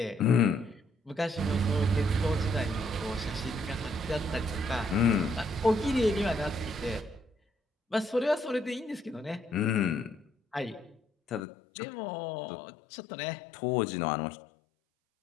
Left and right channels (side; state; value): right; drops out; at 11.5 s